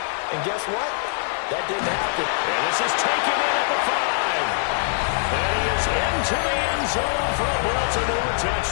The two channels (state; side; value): silent; right; digital silence